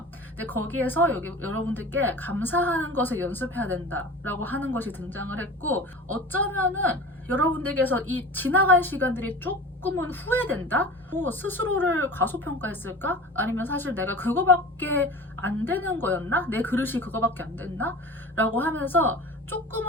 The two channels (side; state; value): both; normal; correlation 0.36